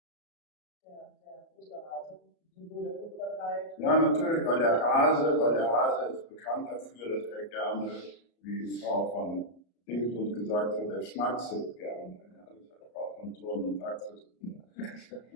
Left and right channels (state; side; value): late; right; 34 ms